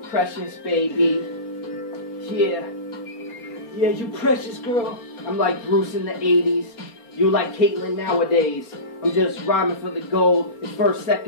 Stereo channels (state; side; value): late; right; 4.3 ms